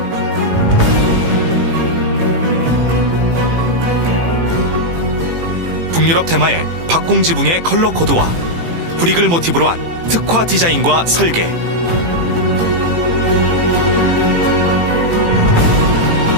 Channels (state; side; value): late; left; 18 ms